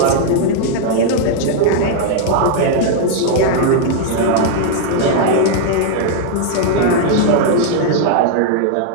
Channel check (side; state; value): both; different; correlation 0.00